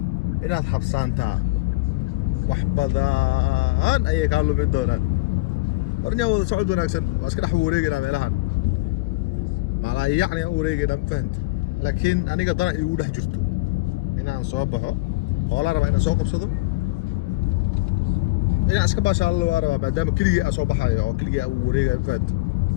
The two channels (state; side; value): quieter; right; 21.1 dB